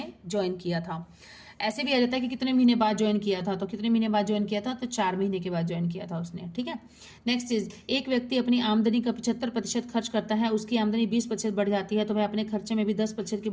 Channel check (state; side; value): identical; both; correlation 1.00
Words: ज्वाइन किया था। ऐसे भी आ जाता है कि कितने महीने बाद ज्वाइन किया था, तो कितने महीने बाद ज्वाइन किया था, तो 4 महीने के बाद ज्वाइन किया था उसने, ठीक है। नेक्स्ट चीज, एक व्यक्ति अपनी आमदनी का 75% खर्च करता है, उसकी आमदनी 20% बढ़ जाती है, तो वह अपने खर्चे में भी 10% की